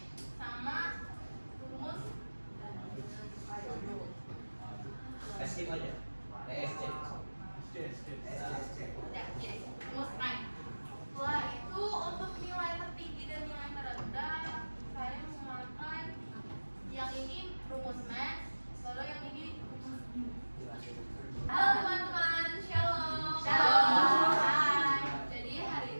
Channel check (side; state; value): both; inverted; correlation -1.00